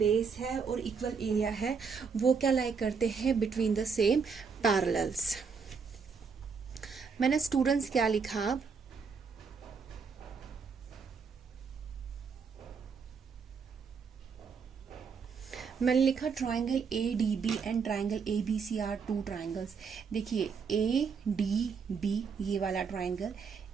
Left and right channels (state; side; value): quieter; left; 5.7 dB